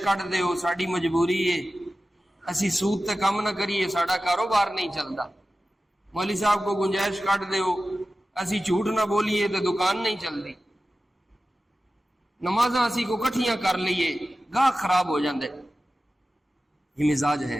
دیو، ساڑی مجبوری ہے، اسی سود تے کم نہ کریے، ساڑا کاروبار نہیں چلتا۔ مولوی صاحب کو گنجائش کٹ دیو، اسی جھوٹ نہ بولیے تے دکان نہیں چلتی۔ نمازاں اسی کو کٹھیاں کر لیے، گاہ خراب ہو جاندے۔ یہ مزاج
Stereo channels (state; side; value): normal; both; correlation 0.95